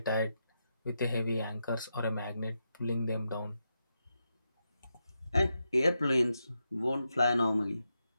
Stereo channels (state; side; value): inverted; both; correlation -0.86